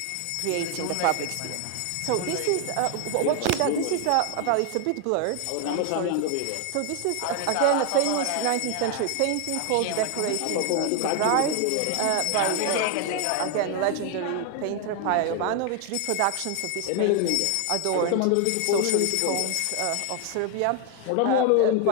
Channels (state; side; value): different; both; correlation 0.00